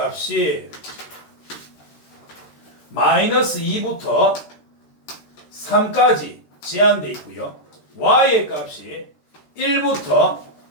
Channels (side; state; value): right; late; 13 ms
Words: 마이너스 2부터 3까지 제한되어 있고요. y의 값이 1부터